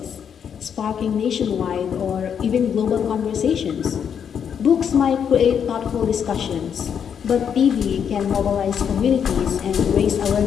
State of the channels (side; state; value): right; quieter; 7.8 dB